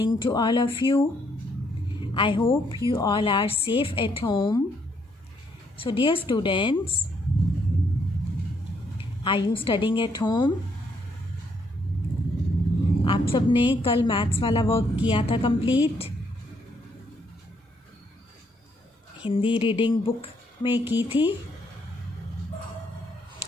to all of you. I hope you all are safe at home. So, dear students, are you studying at home? आप सब ने कल maths वाला work किया था complete? Hindi reading book में की थी.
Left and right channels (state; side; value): normal; both; correlation 0.72